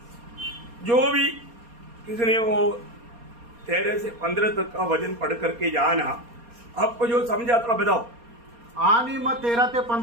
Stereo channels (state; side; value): late; left; 4.2 ms